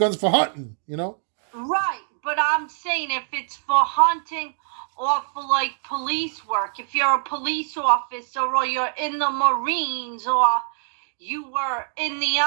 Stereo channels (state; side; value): silent; left; digital silence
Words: for hunting. You know. Right, but I'm saying if it's for hunting or for like police work, if you're a police officer or you're in the Marines or you were in the